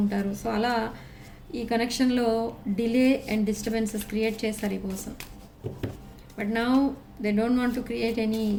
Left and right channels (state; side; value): identical; both; correlation 1.00